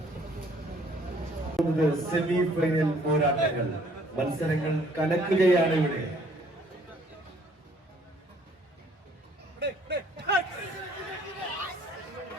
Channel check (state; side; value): normal; both; correlation 0.61